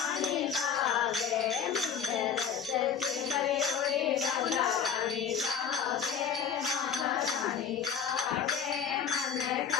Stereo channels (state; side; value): quieter; right; 7.4 dB